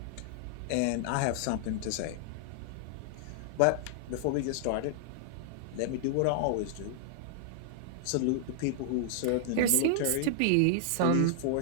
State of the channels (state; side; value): different; both; correlation -0.01